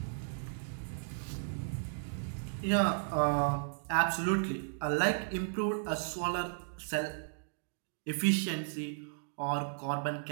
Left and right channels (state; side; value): silent; left; digital silence